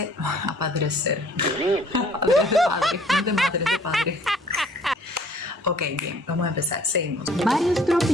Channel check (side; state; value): both; normal; correlation 0.56